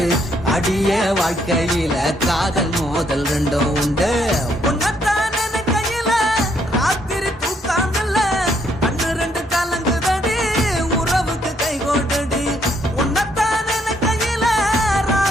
அடிய வாழ்க்கையில காதல் மோதல் ரெண்டும் உண்டு உன்னத்தான் நினைக்கையில ராத்திரி தூக்காமல்ல கண்ணு ரெண்டு கலங்குதடி உறவுக்கு கை கோட்டடி உன்னத்தான் நினைக்கையில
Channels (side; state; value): both; normal; correlation 0.71